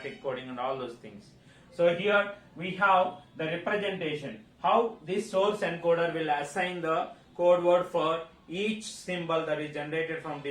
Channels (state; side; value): identical; both; correlation 1.00